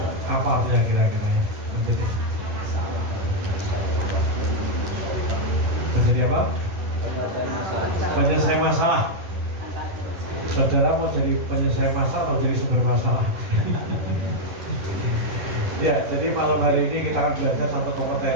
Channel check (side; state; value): left; late; 11 ms